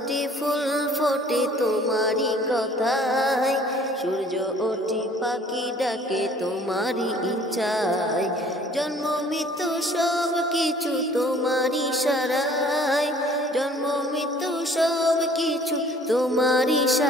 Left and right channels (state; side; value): normal; both; correlation 0.54